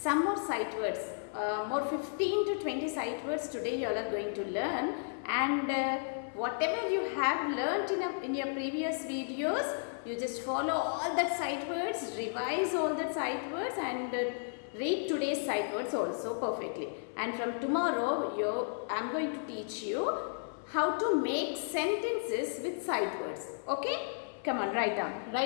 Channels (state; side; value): silent; right; 55 dB below the other